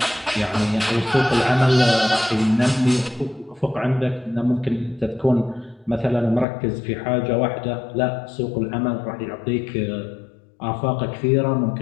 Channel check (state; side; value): drops out; right; at 6.5 s